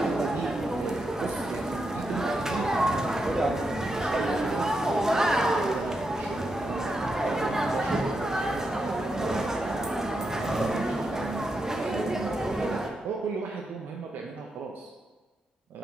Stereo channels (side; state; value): both; normal; correlation 0.85